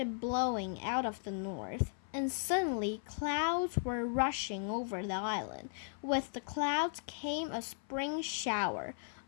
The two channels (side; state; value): right; silent; 53 dB below the other